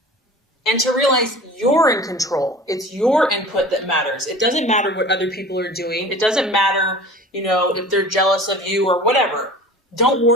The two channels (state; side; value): normal; both; correlation 0.41